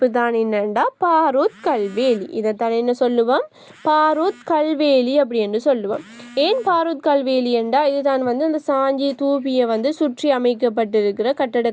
தான் என்னண்டா பாரூத் கல்வேலி. இதைத்தான் என்ன சொல்லுவோம், பாரூத் கல்வேலி அப்படின்னு சொல்லுவோம். ஏன் பாரூத் கல்வேலி என்றா இதுதான் வந்து அந்த சாஞ்சி தூபியை வந்து சுற்றி அமைக்கப்பட்டிருக்கிற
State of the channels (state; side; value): identical; both; correlation 1.00